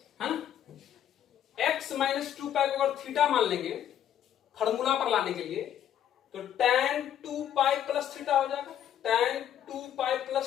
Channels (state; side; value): quieter; right; 10.3 dB